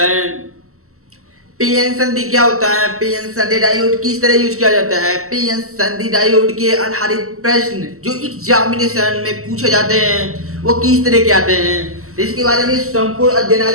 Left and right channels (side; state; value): left; late; 0.63 ms